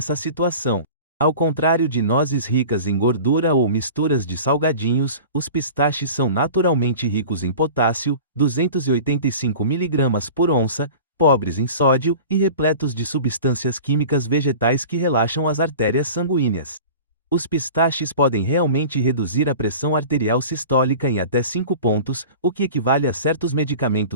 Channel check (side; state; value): both; inverted; correlation -0.39